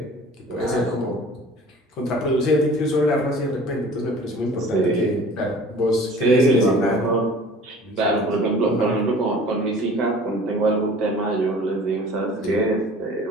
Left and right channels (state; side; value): normal; both; correlation 0.46